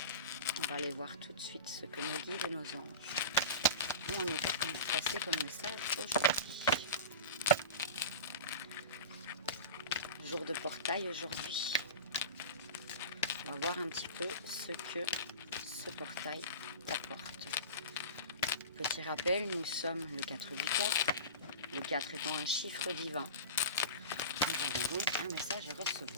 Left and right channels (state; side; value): inverted; both; correlation -0.31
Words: On va aller voir tout de suite ce que nos guides et nos anges ont à nous passer comme message aujourd'hui. Jour de portail aujourd'hui. On va voir un petit peu ce que ce portail t'apporte. Petit rappel, nous sommes le 4 du 4, le 4 étant un chiffre divin. Nous avons donc un message à